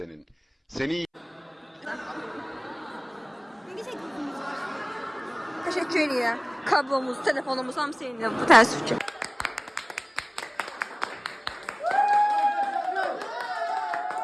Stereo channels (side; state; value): both; identical; correlation 1.00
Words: Seni Teşekkür edirəm. Kablomuz, telefonumuz hamısı indi. Bu təəssüf ki.